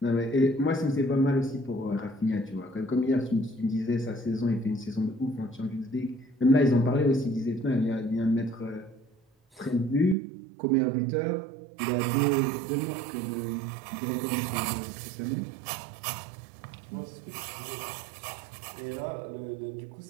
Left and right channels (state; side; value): drops out; left; at 10.2 s